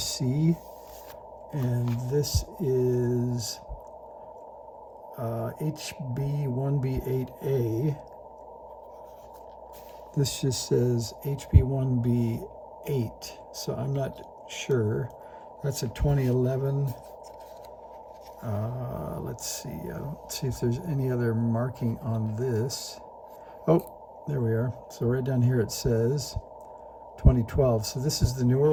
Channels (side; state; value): both; identical; correlation 1.00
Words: and this is HB-1B8A. This just says HB-1B8, so I'm not sure. That's a 2011. Let's see if there's any other marking on this. Oh, there we are. So right down here it says 2012. So this is the newer